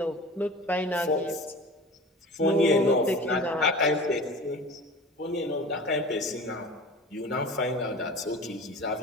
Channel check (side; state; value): both; normal; correlation 0.37